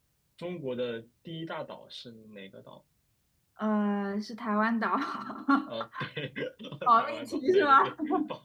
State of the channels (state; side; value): identical; both; correlation 1.00